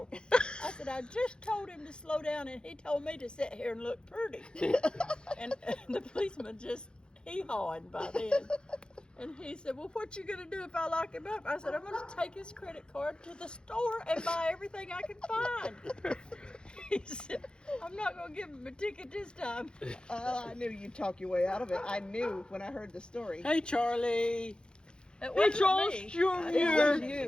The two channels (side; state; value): right; late; 0.049 ms